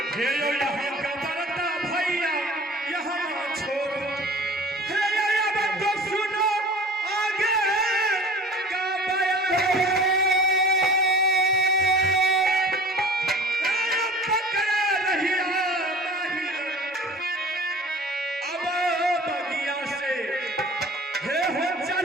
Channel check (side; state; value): both; normal; correlation 0.43